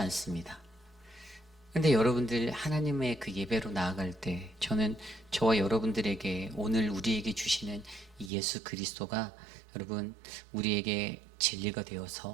근데 여러분들 하나님의 그 예배로 나아갈 때 저는 저와 여러분들에게 오늘 우리에게 주시는 이 예수 그리스도가 여러분 우리에게 진리가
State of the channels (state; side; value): drops out; left; at 8.3 s